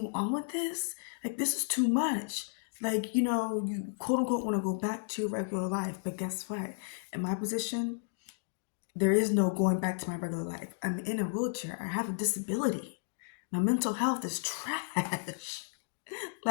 on with this? Like, this is too much. Like, you quote unquote want to go back to your regular life. But guess what? In my position, there is no going back to my regular life. I'm in a wheelchair. I have a disability. My mental health is trash.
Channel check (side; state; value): right; silent; digital silence